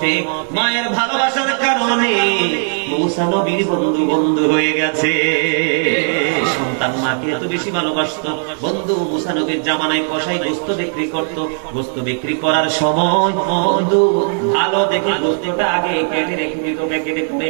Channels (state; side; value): silent; left; digital silence